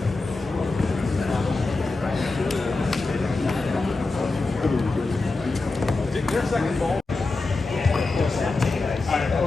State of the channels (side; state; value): right; quieter; 3.5 dB